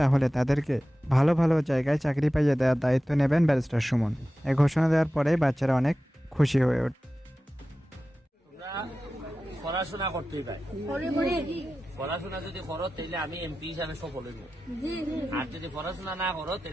তাহলে তাদেরকে ভালো ভালো জায়গায় চাকরি পাইয়ে দেওয়ার দায়িত্ব নেবেন ব্যারিস্টার সুমন। এই ঘোষণা দেওয়ার পরে বাচ্চারা অনেক খুশি হয়ে ওঠে। পড়াশোনা করতেই পাই, পড়াশোনা যদি করো তাহলে আমি এমপি হিসাবে সফল হইব, আর যদি পড়াশোনা না করো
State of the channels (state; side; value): normal; both; correlation 0.94